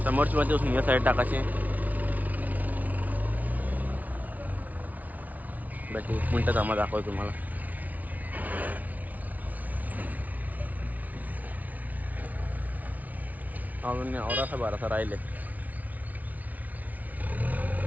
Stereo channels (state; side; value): late; left; 0.074 ms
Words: समोरची मध्ये उचलून या साईड टाकायची. बाकी 1 मिनटं थांबा, दाखवतो तुम्हाला. अजून औरासा बारासा राहिले.